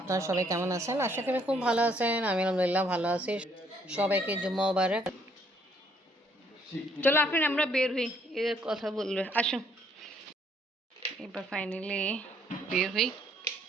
সবাই কেমন আছেন? আশা করি খুব ভালো আছেন। আমি আলহামদুলিল্লাহ ভালো আছি। সবাইকে জুম্মা মুবারক। চলো আফরিন আমরা বের হই, এর কথা বলবে আসো। এবার ফাইনালি বের হই।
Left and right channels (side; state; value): both; normal; correlation 0.67